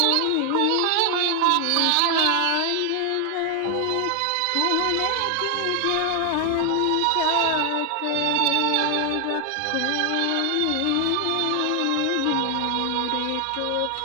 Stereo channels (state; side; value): different; both; correlation 0.00